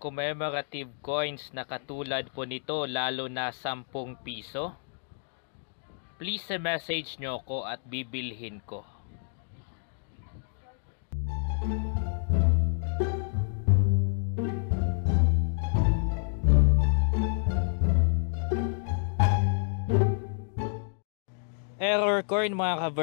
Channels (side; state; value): right; silent; digital silence